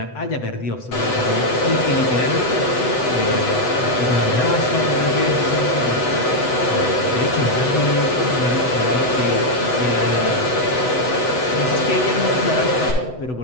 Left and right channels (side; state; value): right; late; 8.0 ms